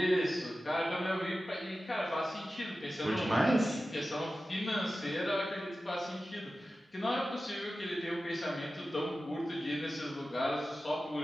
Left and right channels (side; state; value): both; normal; correlation 0.94